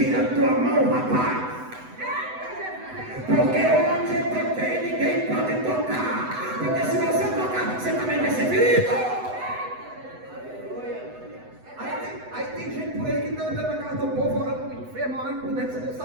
a tua mão, rapaz. Porque onde eu toquei, ninguém pode tocar. Porque se você tocar, você também vai ser ferido. Aí tem gente por aí que está andando na casa do povo, orando para o enfermo, orando por dentro. Você não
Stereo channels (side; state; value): left; late; 8.0 ms